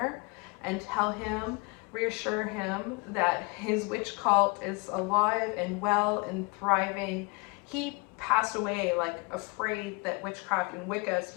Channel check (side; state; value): right; quieter; 29.9 dB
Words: and tell him, reassure him that his witch cult is alive and well and thriving. He passed away like afraid that witchcraft and Wicca